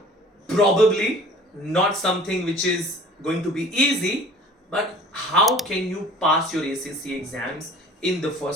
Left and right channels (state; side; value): normal; both; correlation 0.46